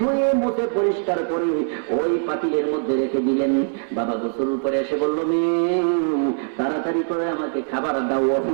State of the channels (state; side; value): silent; left; 64 dB below the other